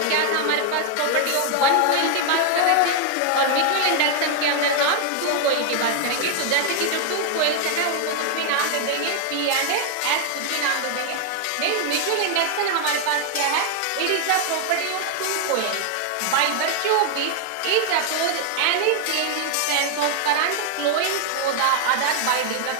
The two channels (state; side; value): different; both; correlation 0.00